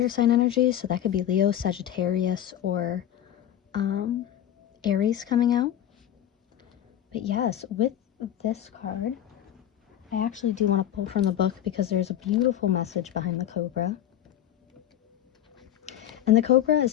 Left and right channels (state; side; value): quieter; right; 11.3 dB